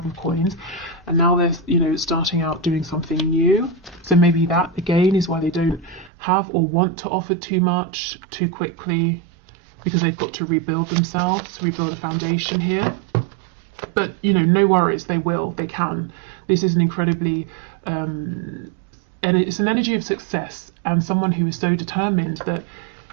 of Coins, and now they're, you know, starting out doing something new. So maybe that, again, is why they don't have or want to offer too much too quickly, because they've got to rebuild themselves, rebuild a foundation here. But, you know, no worries, they will, they can. This is an incredibly, and it's an energy of success, and someone who is so determined that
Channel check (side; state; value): left; drops out; at 6.1 s